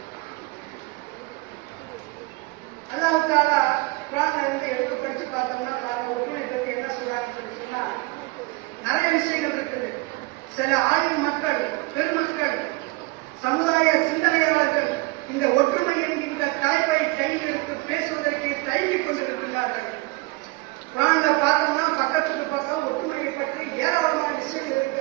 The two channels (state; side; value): quieter; left; 24.1 dB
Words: அல்லாஹ் தஆலா குர்ஆன்ல இருந்து எடுத்து படிச்சு பார்த்தோம்னா ஒற்றுமையை பற்றி என்ன சொல்றாங்கன்னு சொல்லி சொன்னா நிறைய விஷயங்கள் இருக்குது. சில ஆளும் மக்கள், பெருமக்கள், சமுதாய சிந்தனையாளர்கள் இந்த ஒற்றுமை என்கின்ற தலைப்பை கையில் எடுத்து பேசுவதற்கு தயங்கிக் கொண்டிருக்கிறார்கள். குர்ஆன்ல பார்த்தோம்னா பக்கத்துக்கு பக்கம் ஒற்றுமையை பற்றி ஏராளமான விஷயங்கள்